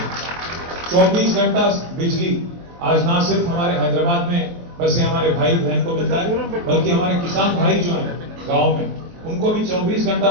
24 घंटा बिजली आज ना सिर्फ हमारे हैदराबाद में बस ये हमारे भाई बहन को मिलता है, बल्कि हमारे किसान भाई जो हैं गांव में, उनको भी 24 घंटा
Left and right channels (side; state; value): left; late; 23 ms